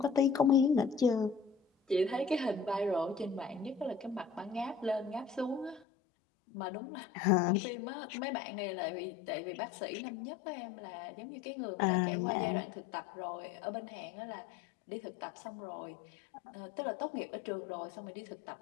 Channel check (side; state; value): right; drops out; at 5.9 s